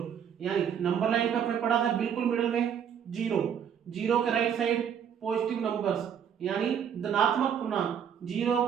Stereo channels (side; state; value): left; quieter; 8.3 dB